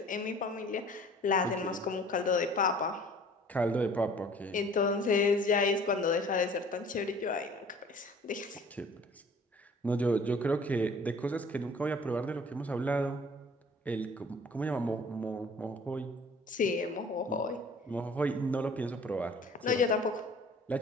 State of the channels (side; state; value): both; normal; correlation 0.50